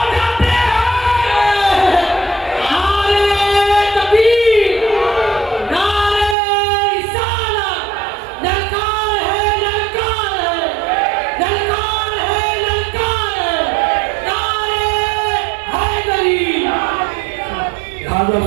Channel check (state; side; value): drops out; left; at 6.4 s